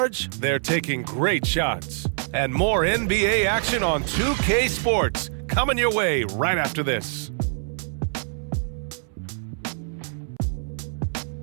they're taking great shots. And more NBA action on 2K Sports coming your way right after this.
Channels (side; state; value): left; silent; 62 dB below the other